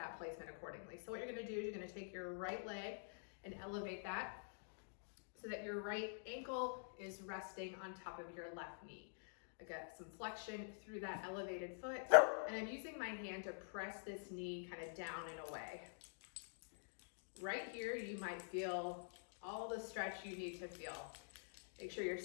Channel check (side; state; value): right; silent; digital silence